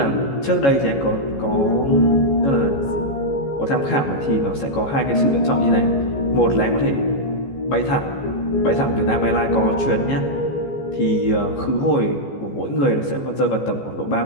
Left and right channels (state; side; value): late; right; 14 ms